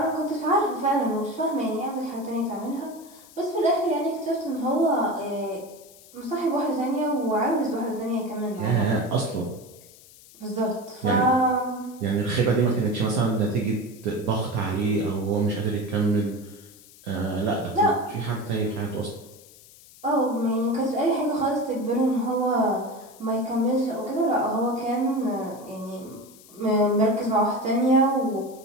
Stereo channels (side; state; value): left; noise; hiss, 23 dB below the sound